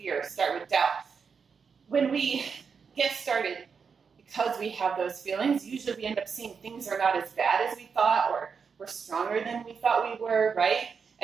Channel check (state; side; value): quieter; left; 5.9 dB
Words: start with doubt. When we get started, because we have those feelings, usually we end up seeing things are not as bad as we thought, or we're stronger than we thought we were, right?